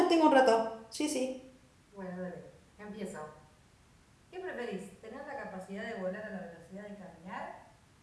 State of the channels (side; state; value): both; identical; correlation 1.00